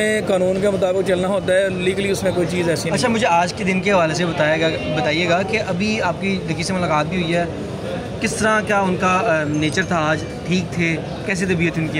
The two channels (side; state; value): both; identical; correlation 1.00